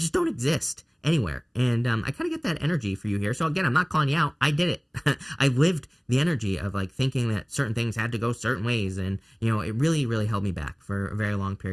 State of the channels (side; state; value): both; identical; correlation 1.00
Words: don't exist anywhere. And I kind of get that energy for you here. So again, I'm not calling you out. I did it. I lived the energy of like thinking that certain things had to go certain ways. And, you know, it really, really held me back for a very long